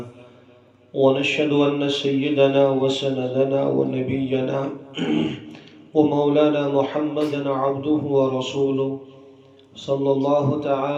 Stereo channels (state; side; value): identical; both; correlation 1.00